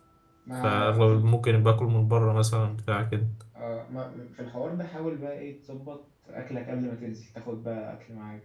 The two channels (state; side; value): identical; both; correlation 1.00